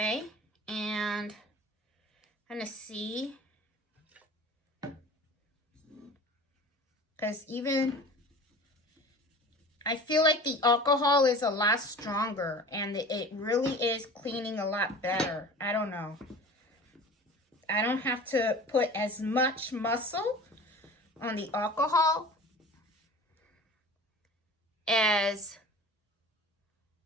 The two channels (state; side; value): normal; both; correlation 0.40